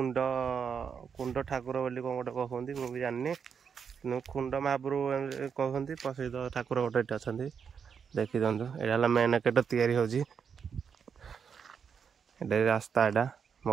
କୁଣ୍ଡ ଠାକୁର ବୋଲି କ'ଣ ଗୋଟେ କହୁଛନ୍ତି, ମୁଁ ବି ଜାଣିନି। କିନ୍ତୁ କୁଣ୍ଡ ମହାପ୍ରଭୁ କହୁଛନ୍ତି। ପ୍ରସିଦ୍ଧ ଠାକୁର ଗୋଟେ ଏଠି ଅଛନ୍ତି, ଦେଖିଦିଅନ୍ତୁ। ଏଇଟା ହେଲା ମେନ୍ ଗେଟ୍ ତିଆରି ହେଉଛି। ଏଇଟା ରାସ୍ତା, ଏଇଟା ମୋ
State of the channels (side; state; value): left; quieter; 6.8 dB